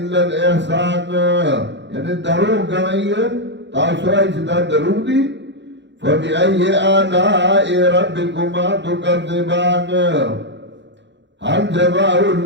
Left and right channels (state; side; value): late; left; 0.52 ms